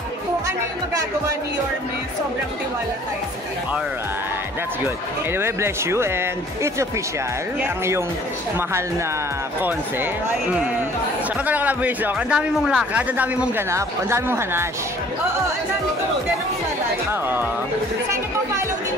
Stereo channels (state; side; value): normal; both; correlation 0.54